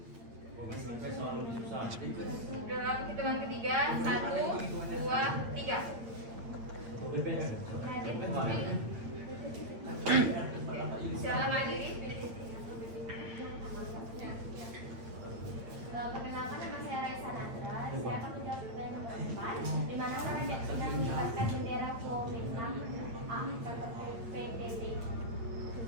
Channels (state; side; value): late; left; 8.8 ms